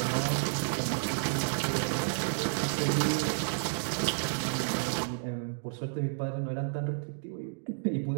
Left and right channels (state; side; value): silent; left; digital silence